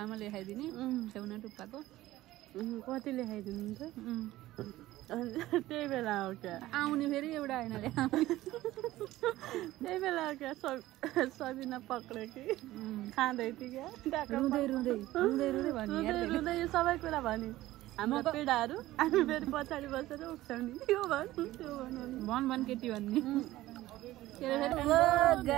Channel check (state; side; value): quieter; left; 16.2 dB